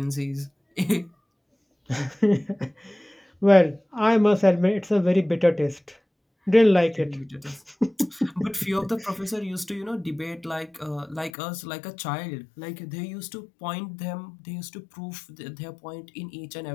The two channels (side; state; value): right; drops out; at 11.3 s